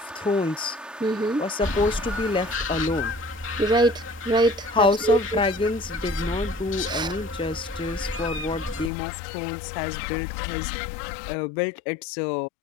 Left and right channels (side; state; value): right; drops out; at 8.9 s